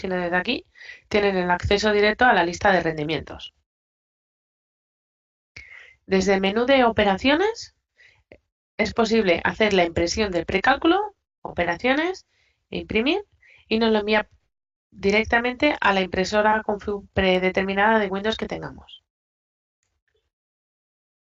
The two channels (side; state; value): both; identical; correlation 1.00